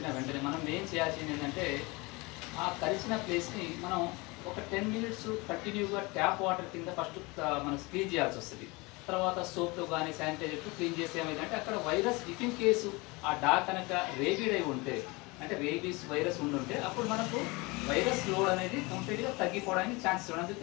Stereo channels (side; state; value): right; quieter; 25.3 dB